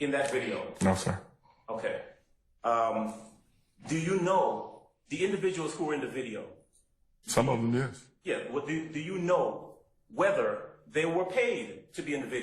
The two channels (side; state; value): both; identical; correlation 1.00